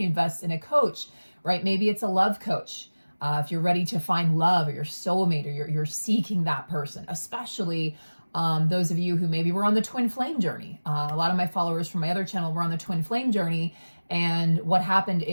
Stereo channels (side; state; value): both; inverted; correlation -1.00